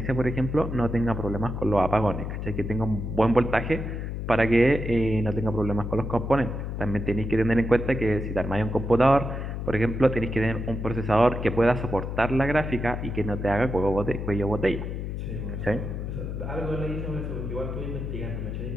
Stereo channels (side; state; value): left; noise; hum, 5 dB below the sound